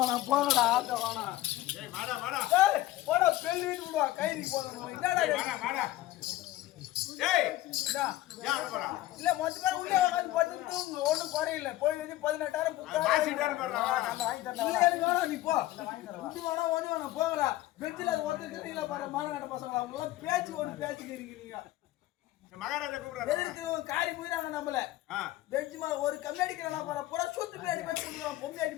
போங்கடா ஆட்ட வேணாம். ஏய் வாடா வாடா. ஏய் போடா பெல் வீட்டு விடுவா. கைதி போறோம். என்னடா வாடா வாடா. ஏய் இந்தா. யார போறா? இல்ல மொத்த பேர் உள்ளே உட்கார்ந்து படுத்து தூங்கு. ஒண்ணும் குறையில்ல. போய் வந்து 18,000 புத்தா. வாசிட்டாரு பாருடா. வாங்கி தரேன். இல்ல எனக்கு வேணாம் நீ போ. வாங்கி தரேன். குட்டி வேணாம் ஒண்ணு வேணாம். போங்கடா. பெஞ்சில அது ஒருத்தர் கிட்டீங்களா பாரு. மானகட்ட பசங்களா. அவங்க எல்லாம் பேச்சு ஒரு பேச்சு இருக்கீங்க. மகாராஜா கூப்பிடுறாரு. எதுக்கு காரி போயிறாங்க நம்மள. பெஞ்ச் மேல ஒரு கம்மி அடிக்கிறா பாரு. பூரா சொத்து பின்னாடி பேசி கொடுக்குறான். பொம்மை அடி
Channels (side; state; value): right; quieter; 16.0 dB